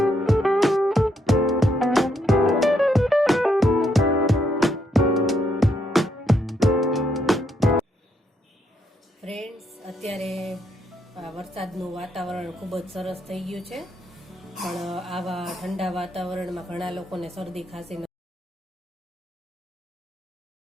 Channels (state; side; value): normal; both; correlation 0.76